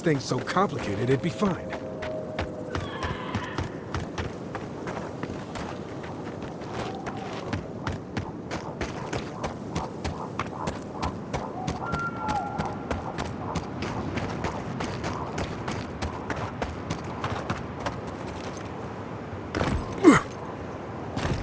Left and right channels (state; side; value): identical; both; correlation 1.00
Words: thing so complicated, it'd be fine.